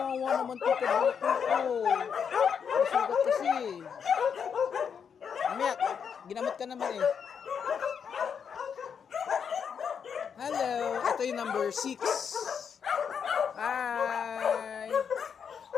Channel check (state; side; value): quieter; right; 7.1 dB